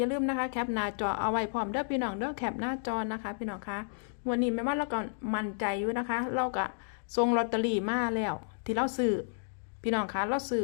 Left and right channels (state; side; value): silent; right; digital silence